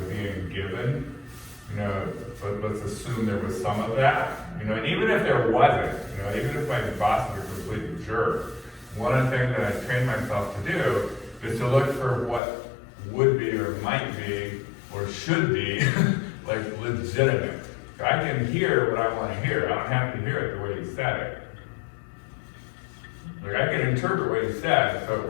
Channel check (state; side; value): drops out; right; at 12.4 s